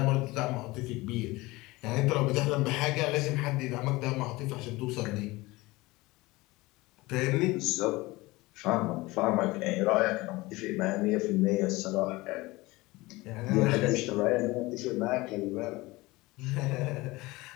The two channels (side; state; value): right; quieter; 21.2 dB